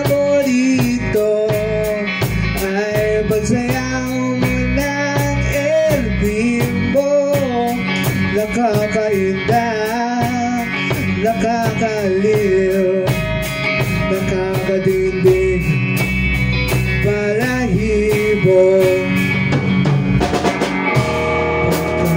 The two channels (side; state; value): both; identical; correlation 1.00